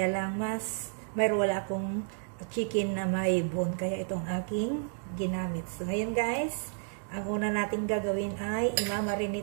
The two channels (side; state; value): left; silent; digital silence